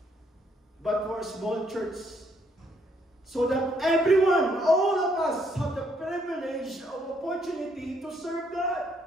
but for small church. So that everyone, all of us, have the privilege of opportunity to serve God.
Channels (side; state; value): both; normal; correlation 0.71